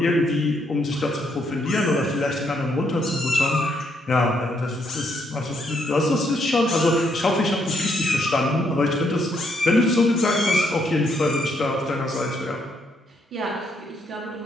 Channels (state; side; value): normal; both; correlation 0.74